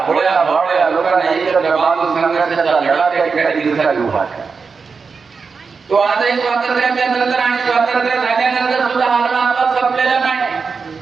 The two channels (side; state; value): left; quieter; 5.1 dB